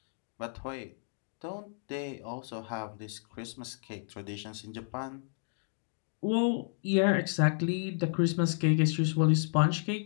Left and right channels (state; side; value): silent; right; 56 dB below the other